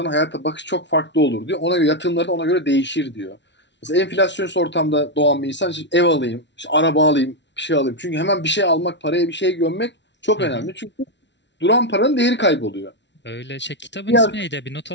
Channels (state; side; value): late; right; 0.51 ms